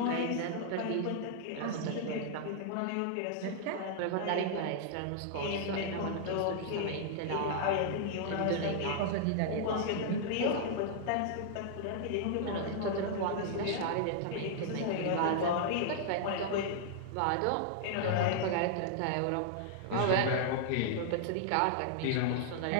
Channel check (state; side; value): different; both; correlation -0.01